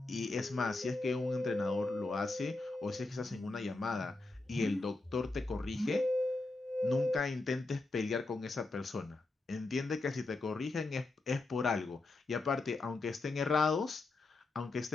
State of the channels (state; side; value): quieter; right; 3.2 dB